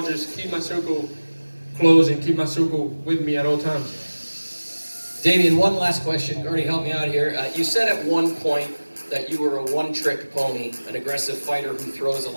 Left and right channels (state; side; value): inverted; both; correlation -1.00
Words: just keep my circle closed and keep my circle with me at all times. Damian, one last question. Gardy, help me out here. You said at one point that you were a one-trick pony, an aggressive fighter who throws a